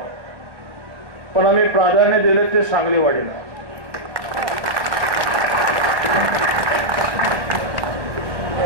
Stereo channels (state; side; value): late; left; 1.1 ms